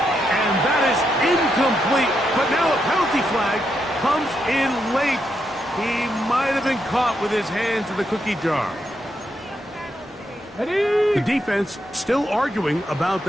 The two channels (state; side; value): normal; both; correlation 0.81